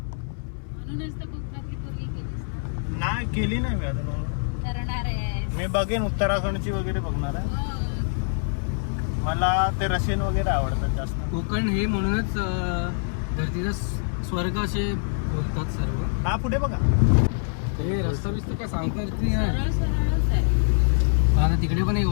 तर कोकणातली पूर्वी केलीस नाही केली नाही मी अजून. करणार आहे. मी बघेन उत्तराखंडची वगैरे बघणार आहे. मला ते रशियन वगैरे आवडतात जास्त. कोकण हे म्हणूनच धरतीचा स्वर्ग असे बोलतात सर्व. हा पुढे बघा. हे रस्ता बिस्ता काय सांगता येत नाही. सरळ सरळच आहे. आता तिकडे पण एक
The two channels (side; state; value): right; silent; 62 dB below the other